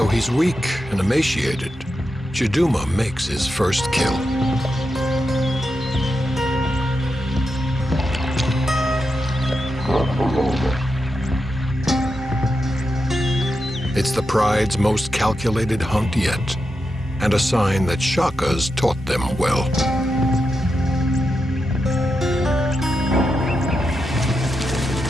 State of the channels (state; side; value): normal; both; correlation 0.87